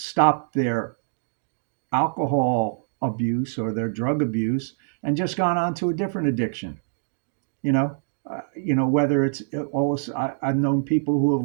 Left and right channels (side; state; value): left; silent; digital silence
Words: their alcohol abuse or their drug abuse and just gone on to a different addiction. You know, whether it's all I've known people who have